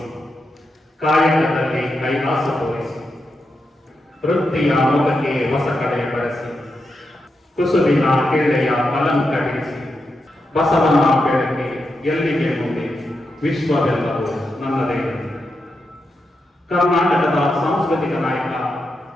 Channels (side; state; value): both; normal; correlation 0.86